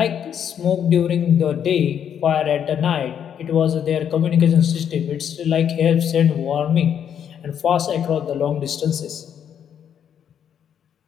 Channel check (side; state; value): right; quieter; 8.7 dB